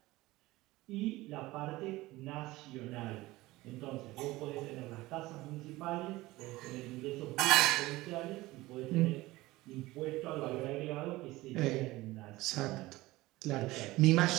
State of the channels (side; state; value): left; quieter; 19.1 dB